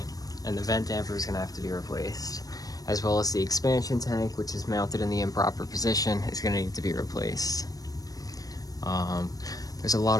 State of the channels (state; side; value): late; right; 0.18 ms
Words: and the vent damper is going to have to be replaced, as well as the expansion tank, which is mounted in the improper position, is going to need to be replaced. There's a lot